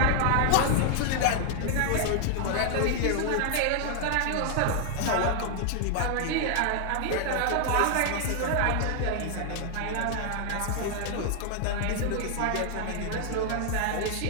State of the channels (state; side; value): different; both; correlation 0.00